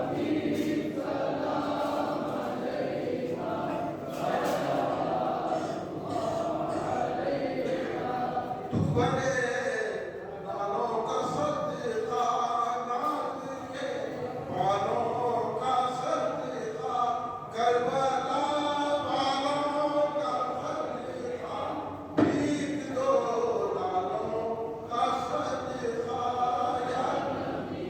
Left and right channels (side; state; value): both; identical; correlation 1.00